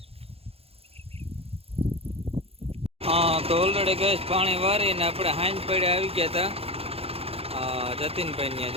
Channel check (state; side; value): late; left; 0.29 ms